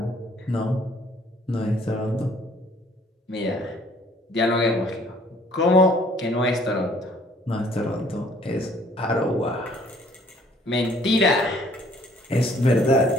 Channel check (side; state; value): both; normal; correlation 0.59